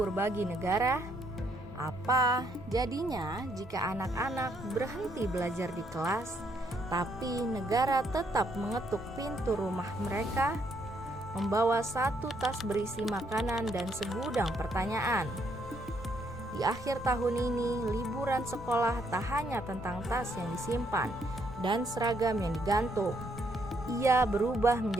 bagi negara? Apa jadinya jika anak-anak berhenti belajar di kelas, tapi negara tetap mengetuk pintu rumah mereka, membawa satu tas berisi makanan dan segudang pertanyaan? Di akhir tahun ini, liburan sekolah tak hanya tentang tas yang disimpan dan seragam yang digantung. Ia berubah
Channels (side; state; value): both; normal; correlation 0.72